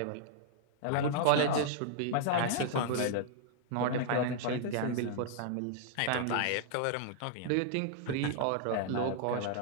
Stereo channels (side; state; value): both; different; correlation -0.01